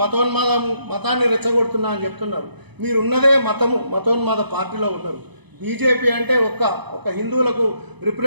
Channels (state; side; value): late; left; 0.99 ms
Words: మతాన్ని రెచ్చగొడుతున్నా అని చెప్తున్నారు. మీరు ఉన్నదే మతోన్మాద పార్టీలో ఉన్నారు. బీజేపీ అంటే ఒక హిందువులకు